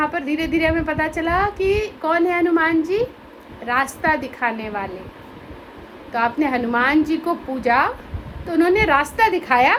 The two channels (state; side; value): identical; both; correlation 1.00